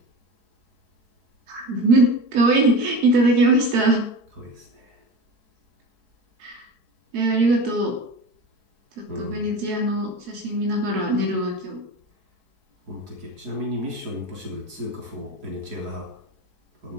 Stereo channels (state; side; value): late; left; 4.7 ms